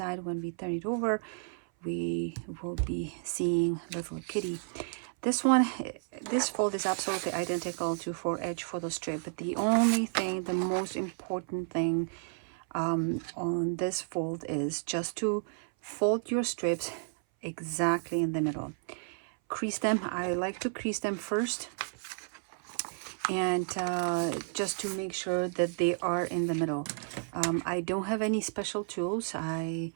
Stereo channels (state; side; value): silent; left; 56 dB below the other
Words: when we turn it over, we will be seeing little kitty. This fold is absolutely identical to 4H photo strip, but the only thing, the most important thing on this fold is just to fold your strips exactly in the middle. Crease them. I like to crease them first, and just to make sure that they are in the middle. I don't have any special tools. I